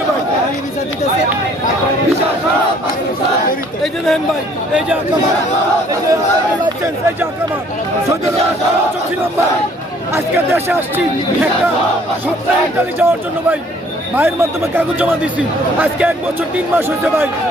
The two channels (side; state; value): both; normal; correlation 0.59